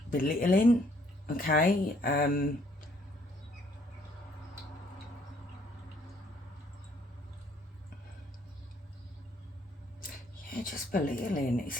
belittling, okay? Yeah, just belittling. It's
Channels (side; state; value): both; normal; correlation 0.65